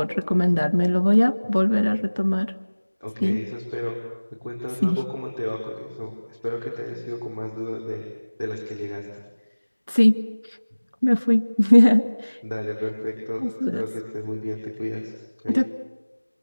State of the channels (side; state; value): both; inverted; correlation -1.00